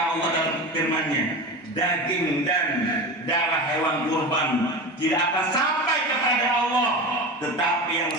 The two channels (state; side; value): normal; both; correlation 0.27